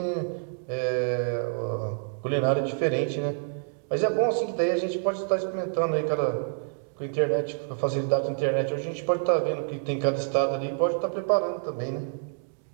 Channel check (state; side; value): silent; left; digital silence